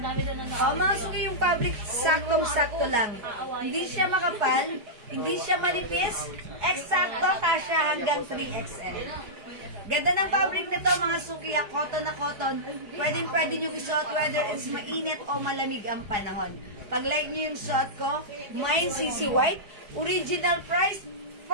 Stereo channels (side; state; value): left; late; 5.0 ms